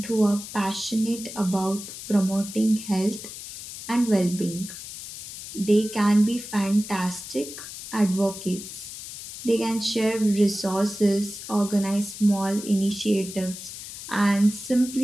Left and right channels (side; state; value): left; noise; hiss, 11 dB below the sound